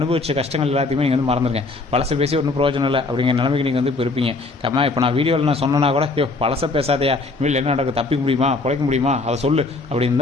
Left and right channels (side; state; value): right; quieter; 3.5 dB